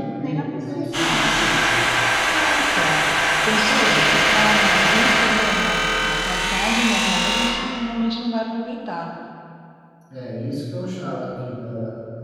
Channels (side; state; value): both; identical; correlation 1.00